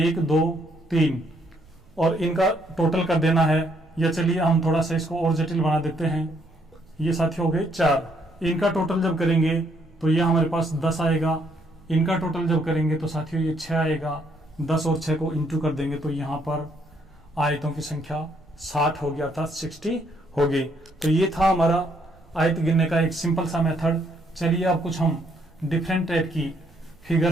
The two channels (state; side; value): noise; right; rumble, 27 dB below the sound